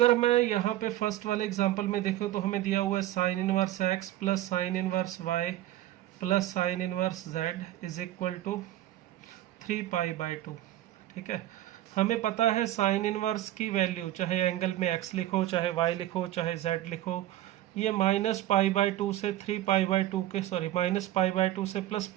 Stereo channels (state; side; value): quieter; left; 14.2 dB